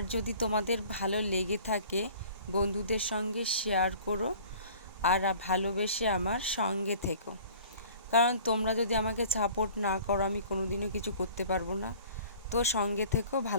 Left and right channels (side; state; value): both; inverted; correlation -0.49